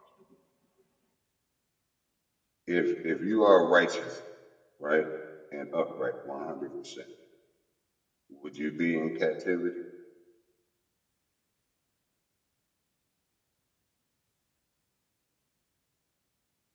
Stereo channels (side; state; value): both; identical; correlation 1.00